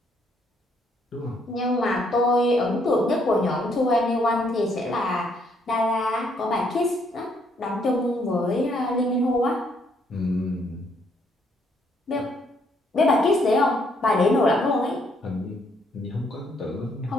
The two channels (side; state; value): both; normal; correlation 0.70